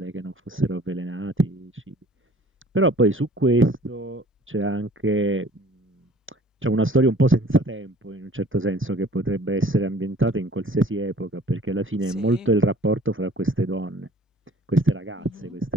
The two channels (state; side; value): normal; both; correlation 0.51